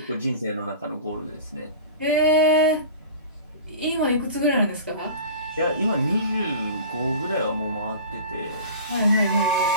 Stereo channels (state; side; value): inverted; both; correlation -0.37